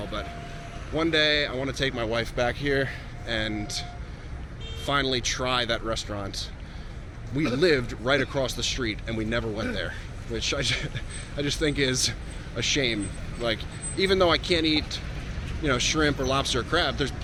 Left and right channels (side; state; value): both; identical; correlation 1.00